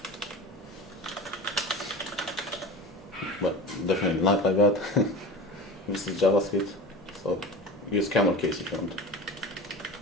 But definitely not like that. This is JavaScript, so use camel case if you want.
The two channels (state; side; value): normal; both; correlation 0.32